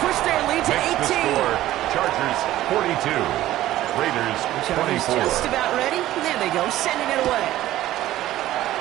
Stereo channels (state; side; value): quieter; left; 14.6 dB